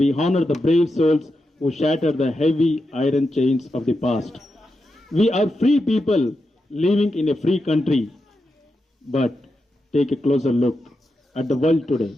honor the brave souls who shattered the heavy iron chains of the past. We are free people living in a free country. But take a closer look at the world today.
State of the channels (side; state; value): both; normal; correlation 0.87